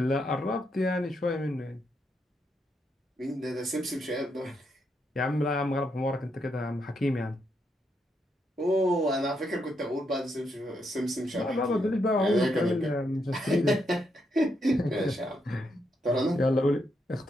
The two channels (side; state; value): both; normal; correlation 0.79